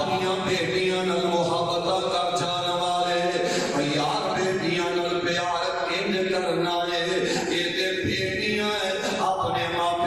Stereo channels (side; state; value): right; noise; rumble, 22 dB below the sound